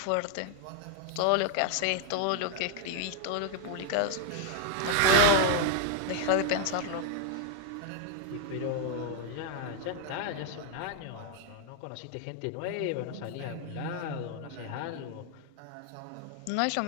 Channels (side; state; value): both; different; correlation 0.00